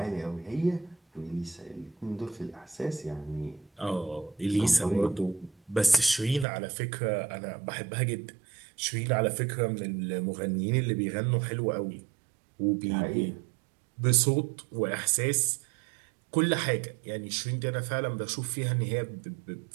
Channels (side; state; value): left; drops out; at 6.5 s